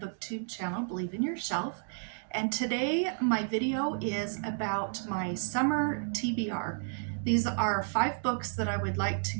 channel, Believe in Yourself. And today my video is about my summer TBR. These are 5 books that I would like to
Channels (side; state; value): left; silent; digital silence